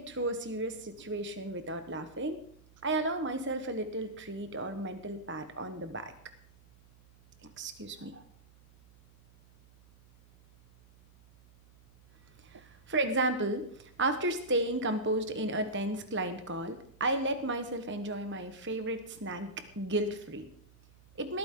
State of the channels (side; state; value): right; noise; hum, 25 dB below the sound